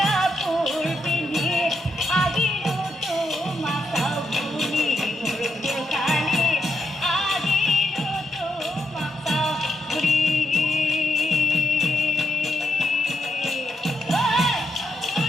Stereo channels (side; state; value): both; normal; correlation 0.80